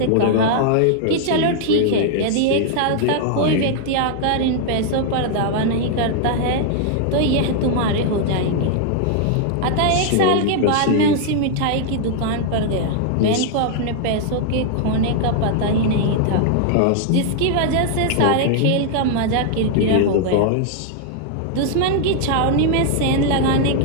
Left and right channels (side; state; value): both; different; correlation 0.00